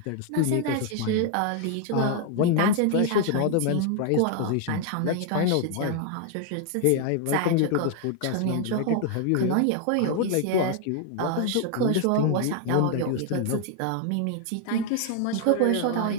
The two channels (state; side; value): different; both; correlation 0.00